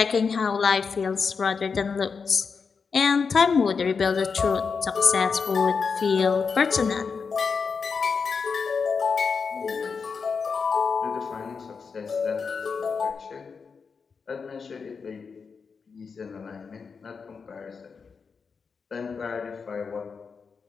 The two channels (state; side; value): quieter; right; 5.4 dB